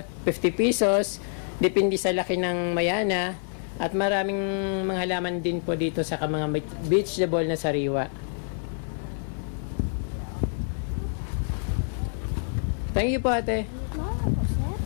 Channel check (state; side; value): silent; right; 60 dB below the other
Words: 50 pesos. Depende sa laki ng mayana. At maraming mga halaman din po dito sa mga vegetable na sariwa. Thank you po, ate.